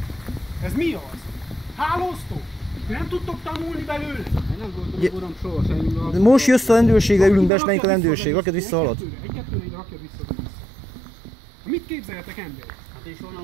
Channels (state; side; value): drops out; left; at 7.5 s